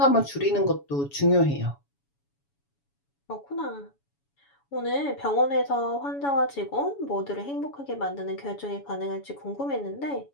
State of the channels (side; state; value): right; late; 7.1 ms